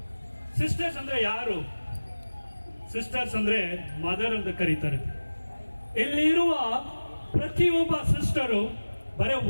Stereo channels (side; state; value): both; inverted; correlation -1.00